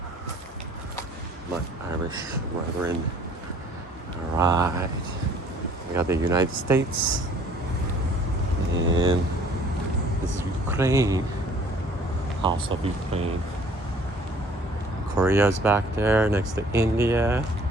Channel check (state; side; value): normal; both; correlation 0.55